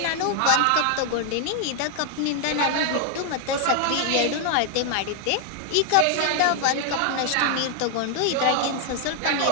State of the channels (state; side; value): different; both; correlation 0.00